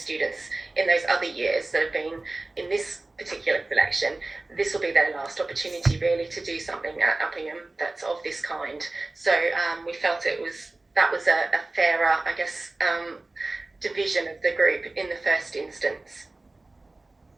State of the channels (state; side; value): quieter; left; 3.0 dB